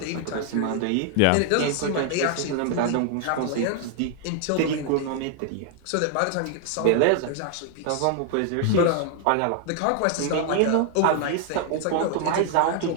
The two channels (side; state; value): both; different; correlation 0.00